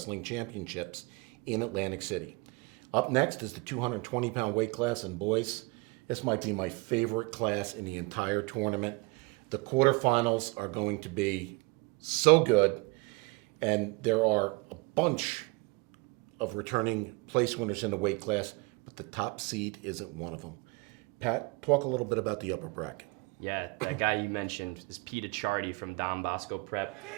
Championships in Atlantic City. Up next is the 220-pound weight class, and boys, this might be my favorite class in the entire tournament. The quarterfinals are going to be so good, and there are a bunch of returning place winners in the weight class, but the top seed isn't one of them. Pat, talk a little bit about the upper bracket. Yeah, that guy you mentioned is Pete Achardi from Don Bosco Prep.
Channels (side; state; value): left; quieter; 26.8 dB